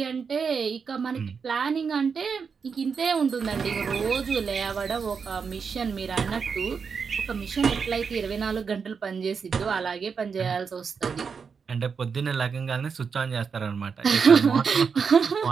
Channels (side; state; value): left; quieter; 5.9 dB